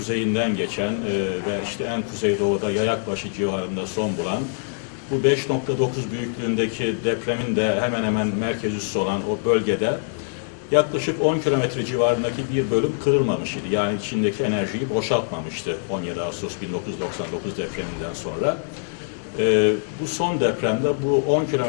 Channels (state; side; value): silent; right; 63 dB below the other